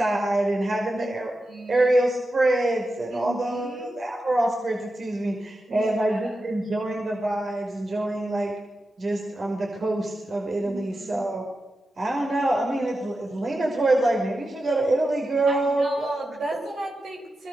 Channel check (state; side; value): normal; both; correlation 0.90